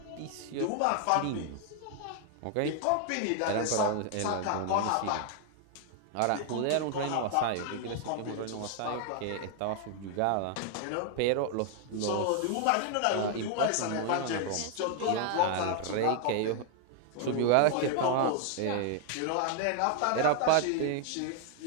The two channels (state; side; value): different; both; correlation 0.00